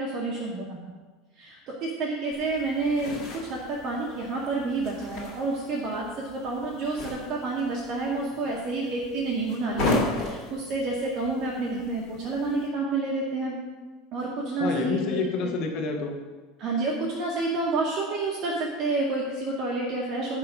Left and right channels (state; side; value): normal; both; correlation 0.31